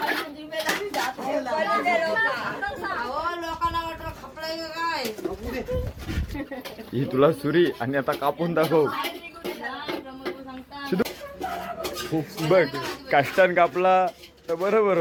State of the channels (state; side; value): identical; both; correlation 1.00